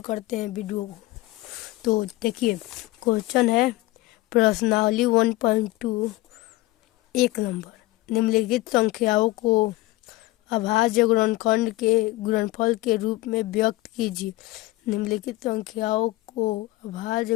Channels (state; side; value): quieter; right; 19.1 dB